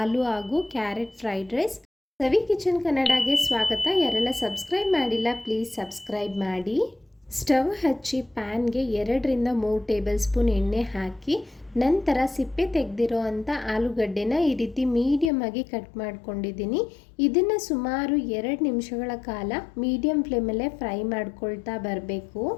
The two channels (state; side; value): drops out; right; at 15.3 s